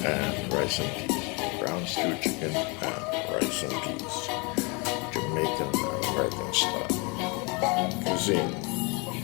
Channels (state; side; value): quieter; right; 30.4 dB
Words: and rice and peas. Brown stewed chicken and rice and peas. Jamaican and American style cuisine.